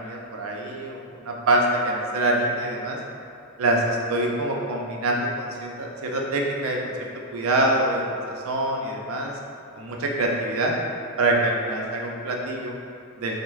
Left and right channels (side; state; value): both; normal; correlation -0.07